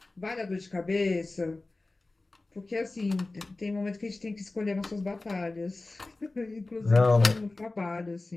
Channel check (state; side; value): quieter; right; 3.2 dB